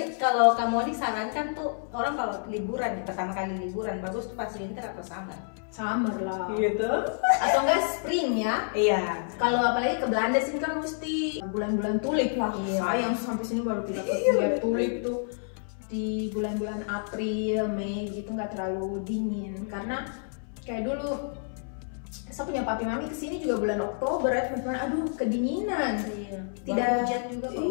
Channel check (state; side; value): silent; right; 59 dB below the other